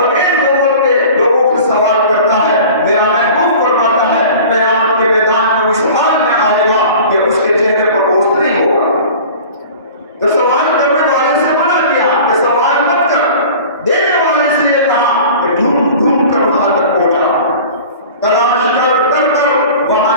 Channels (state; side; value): inverted; both; correlation -0.41